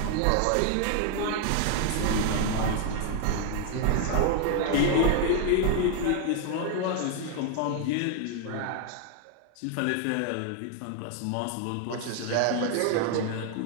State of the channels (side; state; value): both; different; correlation 0.01